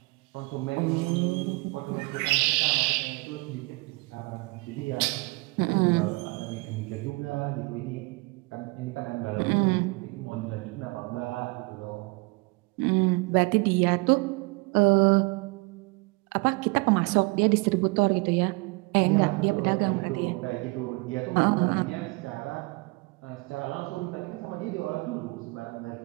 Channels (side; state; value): left; quieter; 26.5 dB